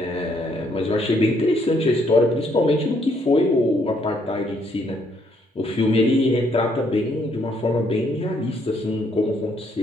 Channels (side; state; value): both; normal; correlation 0.70